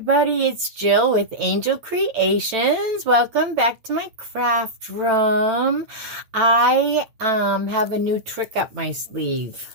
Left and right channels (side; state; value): left; late; 9.0 ms